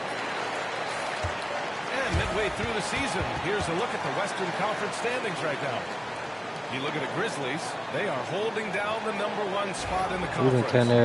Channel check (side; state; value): both; identical; correlation 1.00